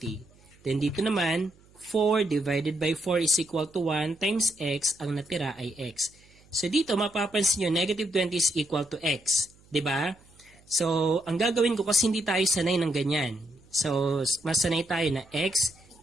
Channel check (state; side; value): noise; right; hum, 28 dB below the sound